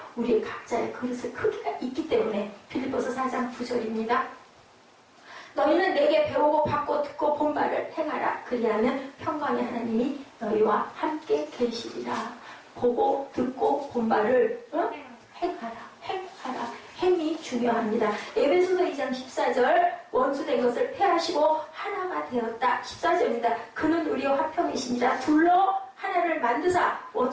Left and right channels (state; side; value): identical; both; correlation 1.00